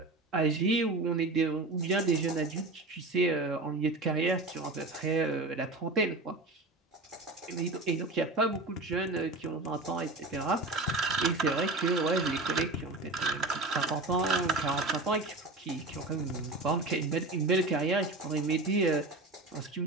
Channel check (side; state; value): left; quieter; 3.0 dB